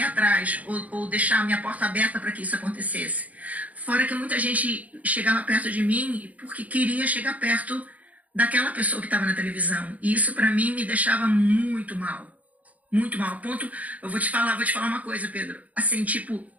atrás ou deixar a minha porta aberta para que isso acontecesse. Fora que muita gente chegava perto de mim porque queria chegar perto daquela pessoa que estava na televisão. E isso para mim me deixava muito mal. Muito mal. A ponto, eu vou te falar uma coisa, Pedro. Assim, tipo,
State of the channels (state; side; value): late; left; 0.073 ms